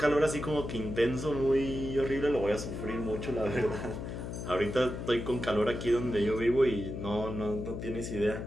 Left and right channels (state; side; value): noise; left; hum, 6 dB below the sound